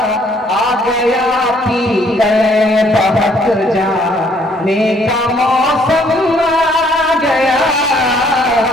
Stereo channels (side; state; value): both; normal; correlation 0.64